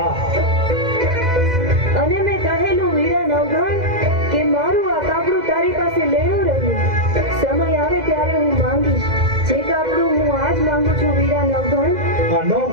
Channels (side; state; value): left; late; 2.0 ms